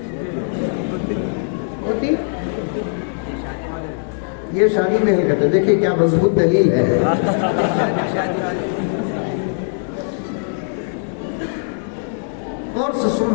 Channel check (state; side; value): silent; right; digital silence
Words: होती, ये शादी में ही कहते। देखिए क्या मजबूत दलील है। और से